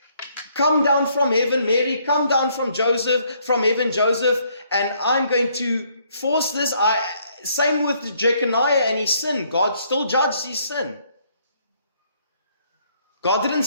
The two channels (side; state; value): both; inverted; correlation -0.68